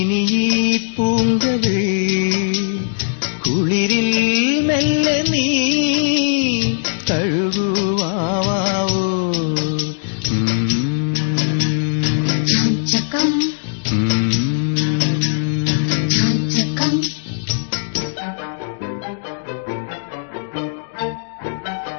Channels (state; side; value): silent; right; digital silence